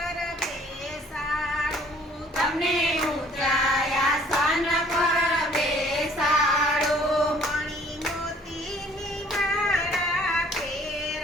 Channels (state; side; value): normal; both; correlation 0.56